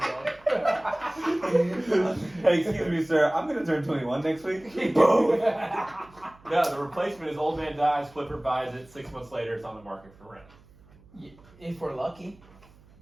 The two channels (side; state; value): right; noise; hum, 26 dB below the sound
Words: Hey, excuse me, sir. I'm gonna turn 21 next week. Boom. No, the replacement is old man dies, flipper buys it, 6 months later it's on the market for rent. If we're lucky,